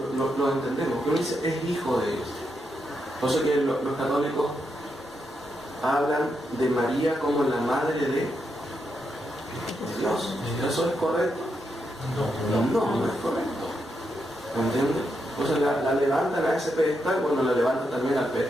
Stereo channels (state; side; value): normal; both; correlation 0.83